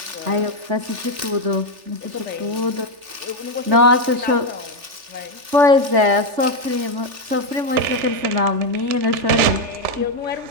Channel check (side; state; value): left; late; 3.4 ms